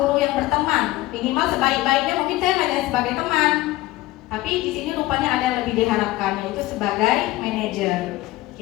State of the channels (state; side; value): quieter; right; 18.1 dB